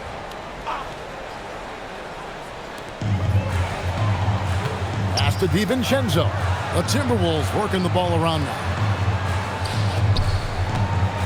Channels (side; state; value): both; identical; correlation 1.00